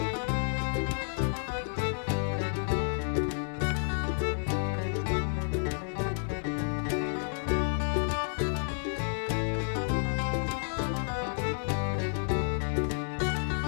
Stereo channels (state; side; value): silent; right; 57 dB below the other